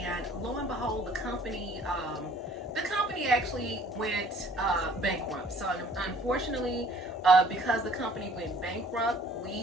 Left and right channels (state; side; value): normal; both; correlation 0.55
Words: lo and behold, the company the company actually went bankrupt. So unfortunately, because the company went bankrupt,